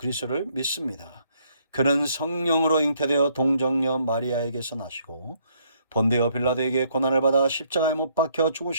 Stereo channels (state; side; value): inverted; both; correlation -0.69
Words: 믿습니다. 그는 성령으로 잉태되어 동정녀 마리아에게서 나시고 본디오 빌라도에게 고난을 받아 십자가에 못 박혀